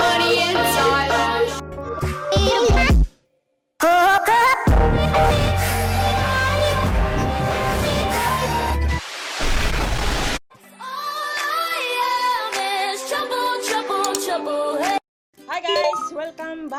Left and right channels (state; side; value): identical; both; correlation 1.00